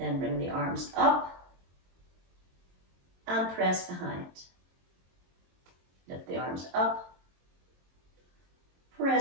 bring the arms up and press behind. Lift the arms up,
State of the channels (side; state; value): left; late; 22 ms